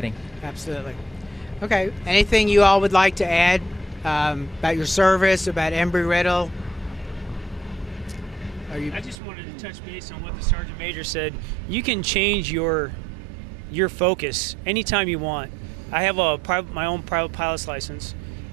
Absolutely. Okay, anything you all would like to add about your service, about Embry Riddle? I just wanted to touch base on what the Sergeant Major said. You can change your focus anytime you want. I have my own private pilot's license,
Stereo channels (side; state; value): left; drops out; at 9.2 s